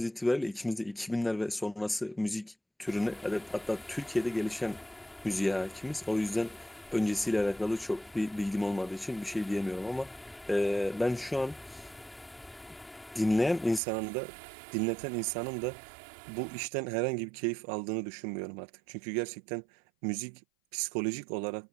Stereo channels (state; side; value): drops out; left; at 13.8 s